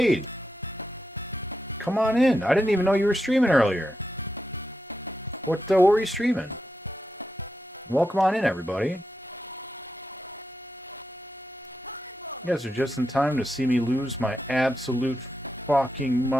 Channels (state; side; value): normal; both; correlation 0.86